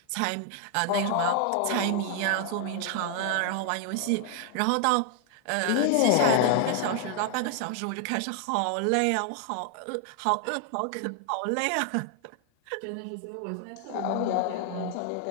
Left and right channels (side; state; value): both; different; correlation 0.00